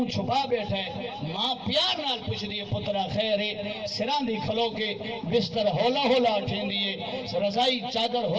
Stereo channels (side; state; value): both; identical; correlation 1.00